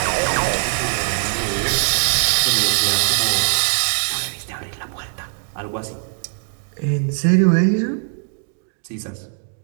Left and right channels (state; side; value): silent; left; 62 dB below the other